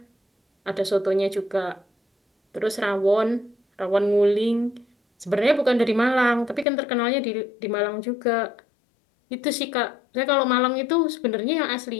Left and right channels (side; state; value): right; drops out; at 6.7 s